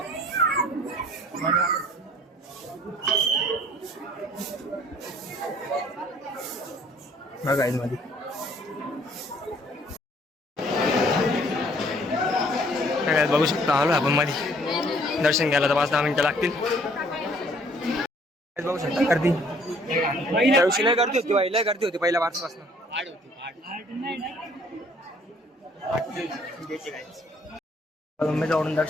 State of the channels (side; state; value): both; normal; correlation 0.59